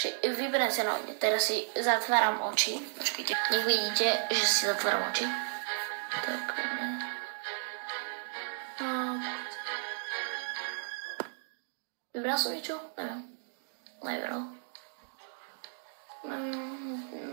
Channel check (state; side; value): silent; left; digital silence